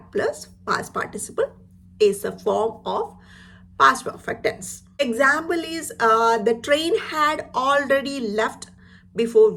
plus past participle is a form of past perfect tense. Example is the train had already left before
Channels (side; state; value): both; identical; correlation 1.00